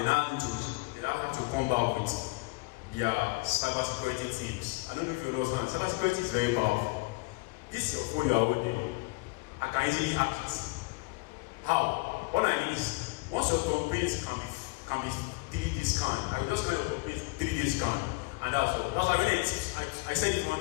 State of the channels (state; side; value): quieter; right; 25.5 dB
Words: now have to come back with their cyber security teams. I don't know if you understand. Cyber security is very powerful. This is your phone you are holding. I can easily hack it. How? What I mean is, once your complaints can be 3D scanned, I will just scan your complaints 3D scan, and that's all. That's why when I said it